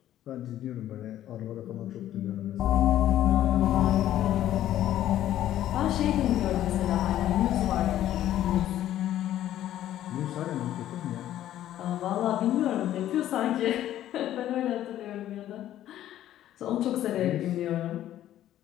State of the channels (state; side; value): quieter; right; 12.5 dB